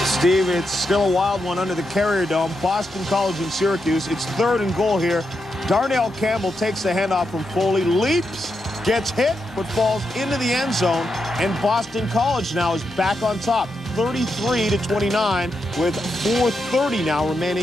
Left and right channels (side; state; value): both; normal; correlation 0.84